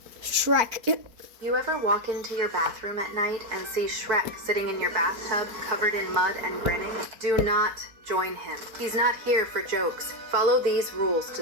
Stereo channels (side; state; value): left; late; 4.6 ms